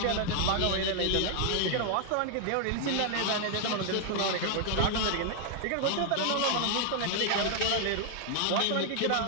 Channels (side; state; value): both; different; correlation 0.00